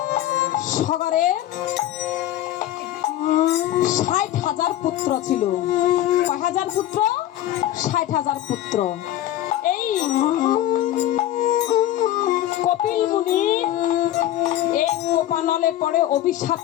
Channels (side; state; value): right; quieter; 13.0 dB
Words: সগরে ৬০,০০০ পুত্র ছিল। কয় হাজার পুত্র? ৬০,০০০ পুত্র। এই কপিল মুনি এই কোপানলে পড়ে,